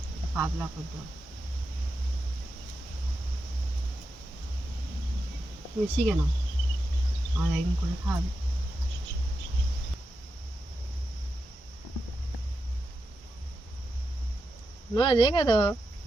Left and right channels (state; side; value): normal; both; correlation 0.88